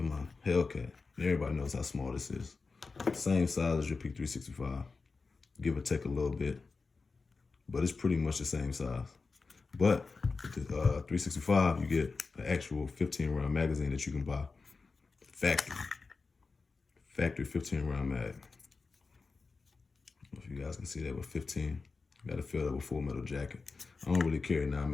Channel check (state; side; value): quieter; right; 4.3 dB